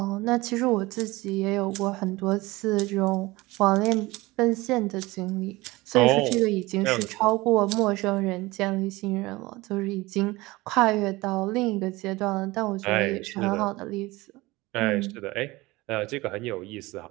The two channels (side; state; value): left; quieter; 20.9 dB